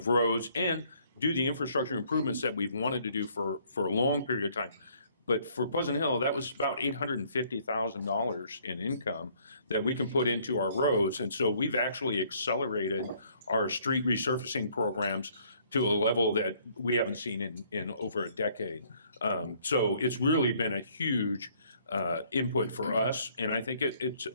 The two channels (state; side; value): inverted; both; correlation -0.63